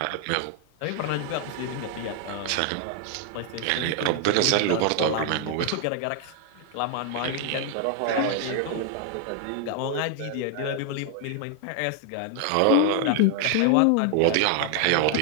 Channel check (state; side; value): different; both; correlation 0.00